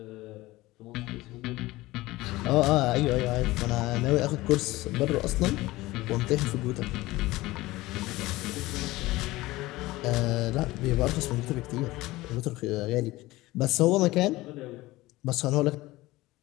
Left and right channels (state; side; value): quieter; right; 18.9 dB